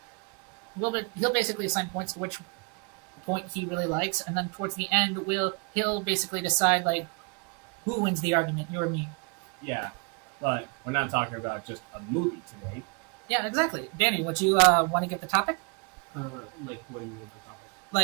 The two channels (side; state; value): left; quieter; 33.4 dB